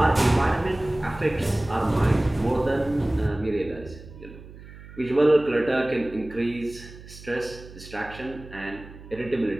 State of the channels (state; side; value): noise; right; hum, 17 dB below the sound